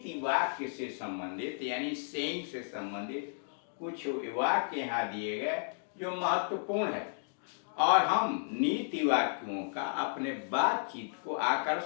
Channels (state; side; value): silent; right; digital silence